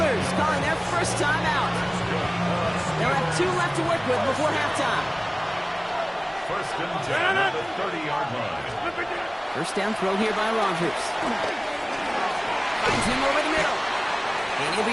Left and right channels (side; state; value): both; identical; correlation 1.00